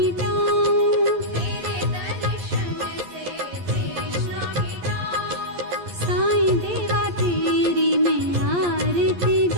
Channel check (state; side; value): late; left; 11 ms